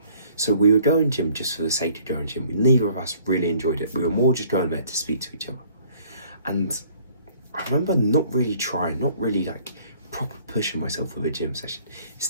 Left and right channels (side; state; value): both; inverted; correlation -0.58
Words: So we were going gym just for the sake of going gym. Neither of us really enjoyed it. We were more just going there to speak to each other. And I remember not really trying, not really like proper pushing myself with a gym session.